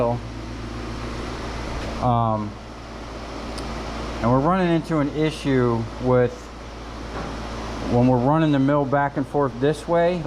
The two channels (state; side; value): identical; both; correlation 1.00